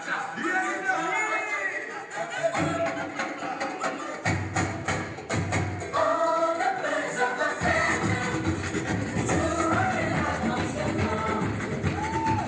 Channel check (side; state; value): both; identical; correlation 1.00